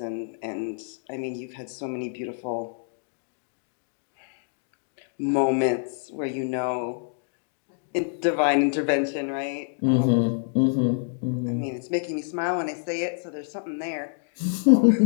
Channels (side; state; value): right; silent; digital silence